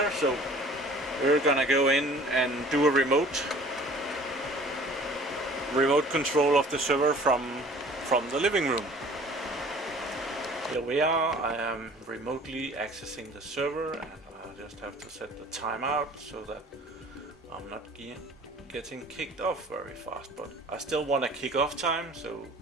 so we're gonna go in and do a remote control of the server from the living room. Here we are. I am remotely accessing the server, and I just have to set the timeout so that I'm not getting kicked off very fast, but I still want a kick-off time, so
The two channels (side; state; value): both; normal; correlation 0.49